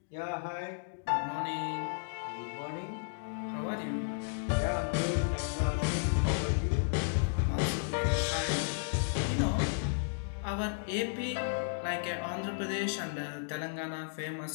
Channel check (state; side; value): silent; right; digital silence